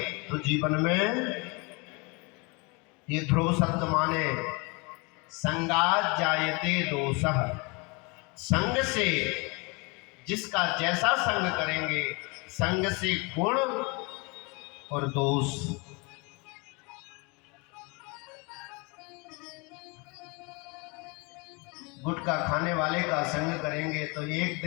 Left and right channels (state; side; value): quieter; right; 29.3 dB